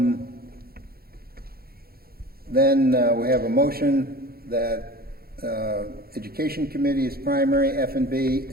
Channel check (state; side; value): late; left; 0.44 ms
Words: Then we have a motion that Education Committee is primary, F&B,